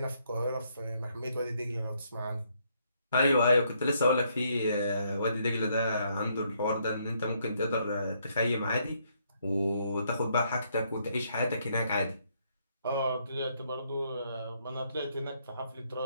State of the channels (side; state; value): both; inverted; correlation -0.72